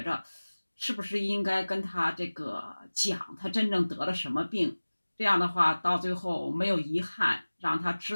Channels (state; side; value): inverted; both; correlation -1.00